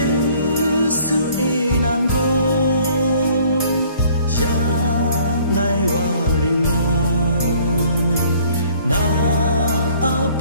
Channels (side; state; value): both; inverted; correlation -0.57